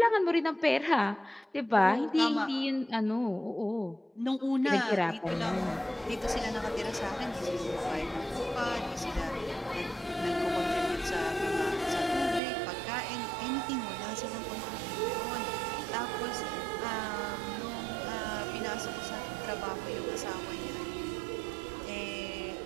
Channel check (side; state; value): left; drops out; at 12.4 s